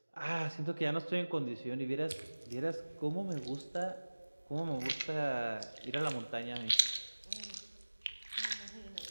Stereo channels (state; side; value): inverted; both; correlation -1.00